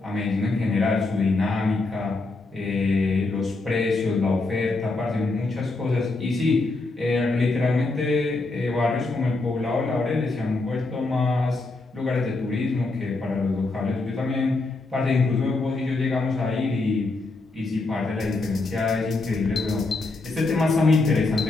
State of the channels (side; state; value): right; quieter; 3.3 dB